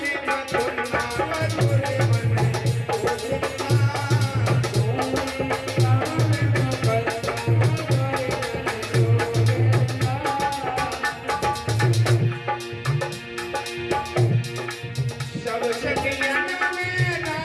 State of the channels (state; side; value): identical; both; correlation 1.00